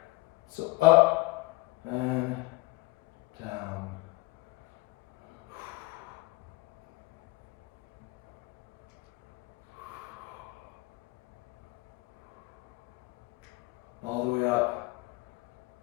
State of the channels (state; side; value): quieter; right; 22.9 dB